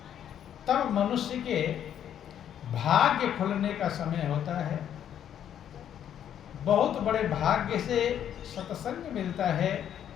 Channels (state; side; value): quieter; right; 9.8 dB